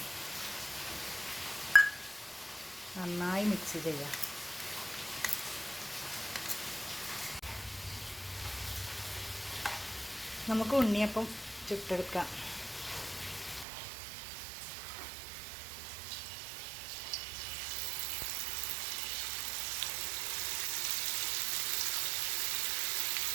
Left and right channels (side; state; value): left; drops out; at 13.7 s